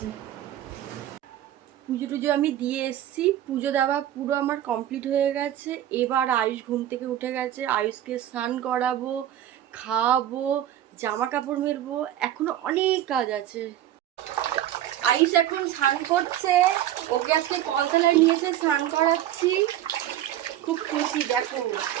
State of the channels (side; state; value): left; quieter; 12.2 dB